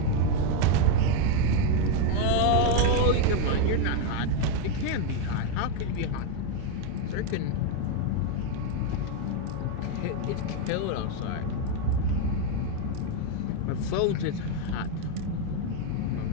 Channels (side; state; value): both; different; correlation 0.02